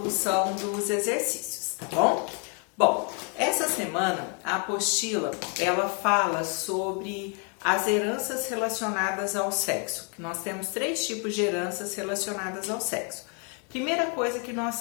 dos exercícios, tá bom? Bom, essa semana a apostila, ela fala sobre as heranças relacionadas ao sexo. Nós temos 3 tipos de heranças relacionadas ao sexo. Primeira coisa que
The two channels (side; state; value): right; quieter; 38.2 dB